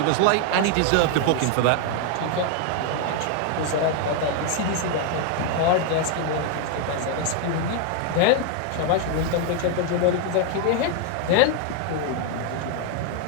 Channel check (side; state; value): both; different; correlation 0.01